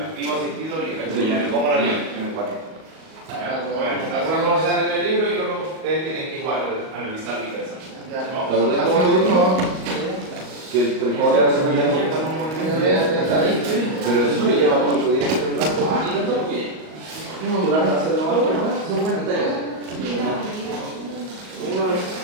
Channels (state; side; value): late; left; 38 ms